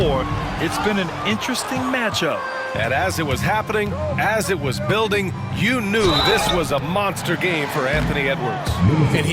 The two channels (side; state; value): both; identical; correlation 1.00